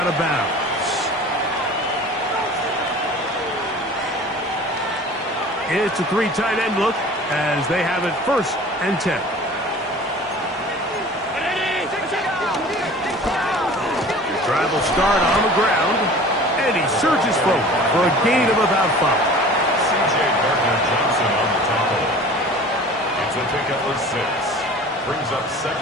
of bounds. It's a 3 tight end look as they have it 1st and 10. Drive will start on the ground, And he surges forward for a gain of about 5. C.J. Gardner-Johnson on the tackle. It's a pickup of 6. Brings up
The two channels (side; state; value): both; normal; correlation 0.43